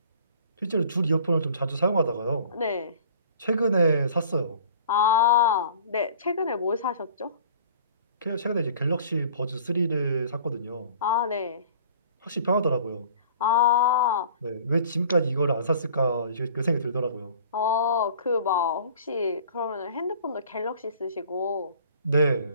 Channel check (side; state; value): both; inverted; correlation -0.49